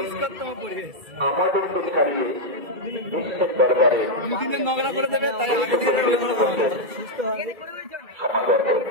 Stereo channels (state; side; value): late; left; 2.3 ms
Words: পরিবেশ নোংরা করে দেবে, তাই সুস্থ হবে।